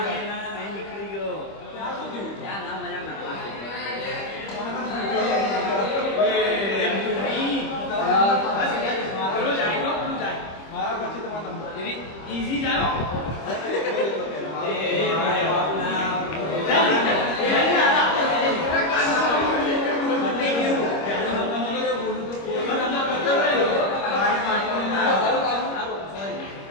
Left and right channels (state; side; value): late; right; 25 ms